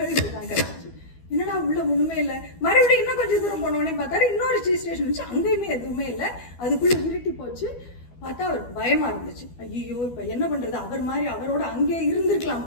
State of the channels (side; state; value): right; late; 12 ms